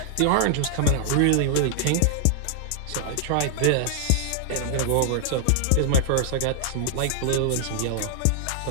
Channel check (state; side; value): different; both; correlation -0.01